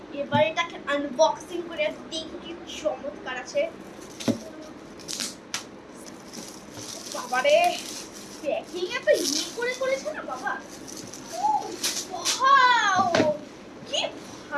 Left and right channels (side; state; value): both; identical; correlation 1.00